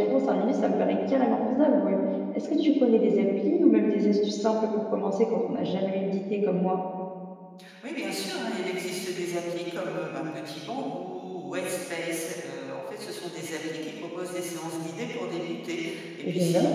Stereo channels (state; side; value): identical; both; correlation 1.00